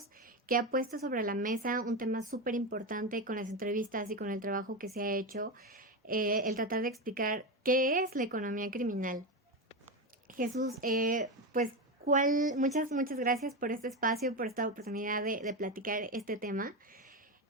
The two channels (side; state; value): both; normal; correlation 0.15